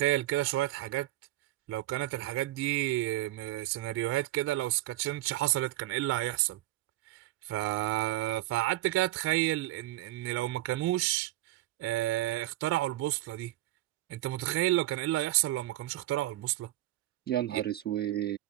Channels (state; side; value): quieter; left; 16.1 dB